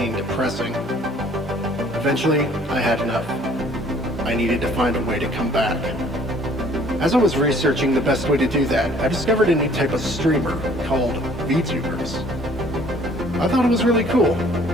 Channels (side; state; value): both; normal; correlation 0.57